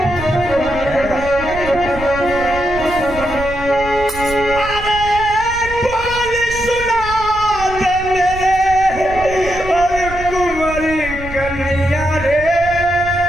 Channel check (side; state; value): right; noise; rumble, 11 dB below the sound